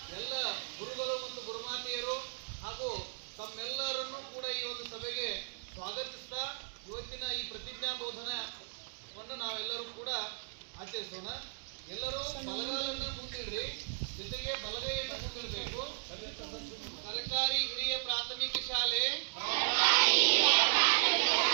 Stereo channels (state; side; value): silent; left; digital silence